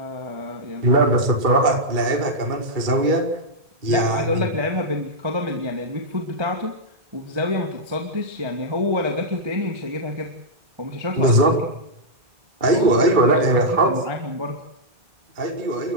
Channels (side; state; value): left; late; 2.3 ms